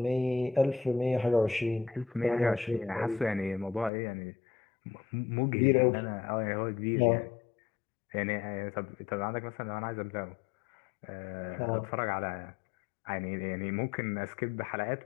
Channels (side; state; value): right; drops out; at 3.9 s